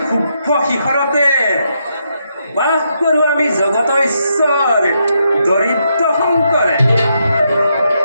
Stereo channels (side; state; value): both; inverted; correlation -0.80